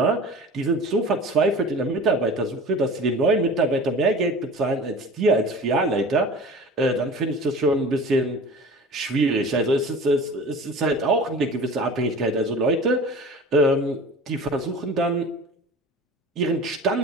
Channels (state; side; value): normal; both; correlation 0.38